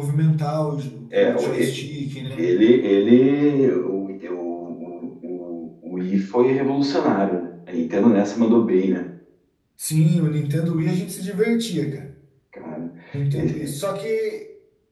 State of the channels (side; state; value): both; identical; correlation 1.00